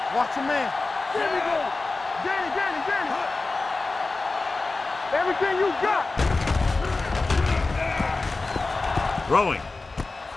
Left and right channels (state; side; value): quieter; right; 3.6 dB